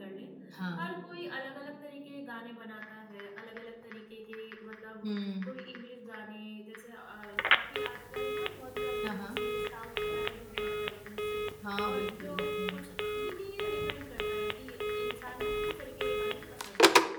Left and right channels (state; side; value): identical; both; correlation 1.00